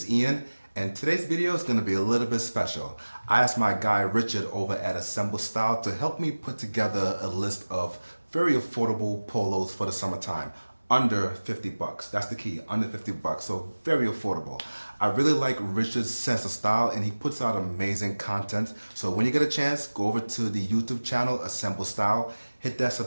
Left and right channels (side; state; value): both; inverted; correlation -1.00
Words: Ian, and today's video is going to be a little bit special. I asked my guy Richard over at Assemble Style to help me put together a list of very affordable polos for the summertime. Under 50 bucks. That's the key, under 50 bucks. So very affordable. I really like Richard's sense of style, and he puts out amazing content. So when you get a chance, go over to the YouTube channel, Assemble Style, hit that